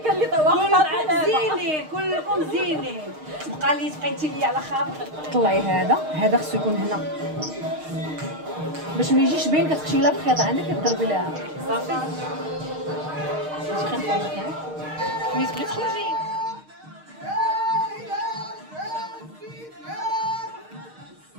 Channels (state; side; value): late; left; 6.5 ms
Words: اللي واقفه على زينين كلكم زينين. بقى لي تقيتي لي على خاطر طلعي هذا خصو يكون هنا باش ما يجيش باين. كتخشي لا بخيط عندك كضربي لها صافي ملي تبغي تخرجي.